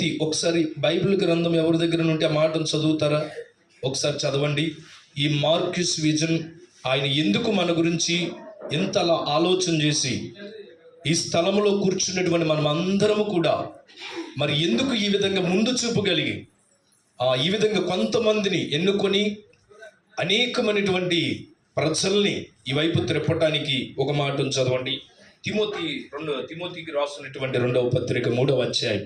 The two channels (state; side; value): identical; both; correlation 1.00